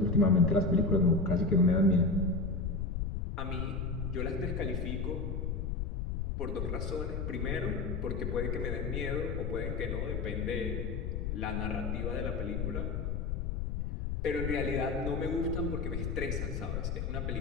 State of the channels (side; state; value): left; noise; rumble, 2 dB below the sound